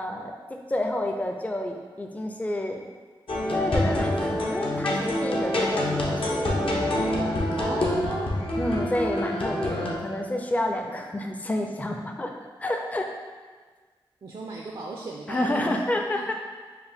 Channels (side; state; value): both; normal; correlation 0.82